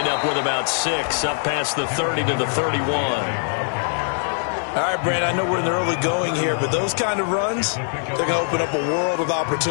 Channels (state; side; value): silent; right; 57 dB below the other